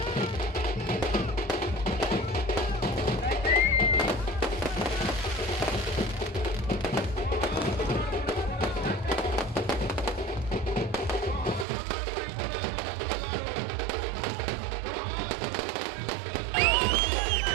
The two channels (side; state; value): left; drops out; at 11.7 s